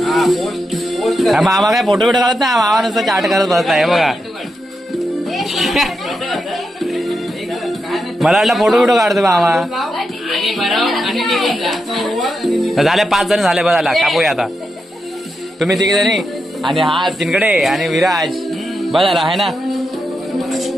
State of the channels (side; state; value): both; normal; correlation 0.86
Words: मामा काय फोटो बिटो काढत नाही, मामा नुसतं चाट करत बसलाय बघा. मला वाटलं फोटो बिटो काढतो मामा. झाले 5 जण झाले, बघा कापूया आता. तुम्ही 3 जणी आणि हा तिनकडे आणि विराज बघायला आहे ना.